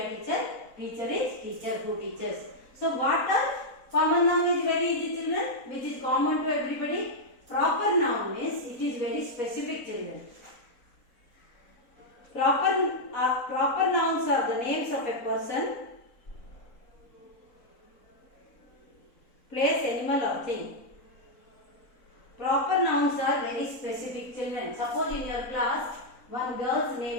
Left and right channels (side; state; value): right; late; 3.9 ms